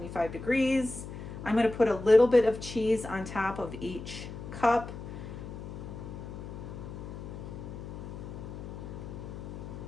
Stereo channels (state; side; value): noise; left; hum, 10 dB below the sound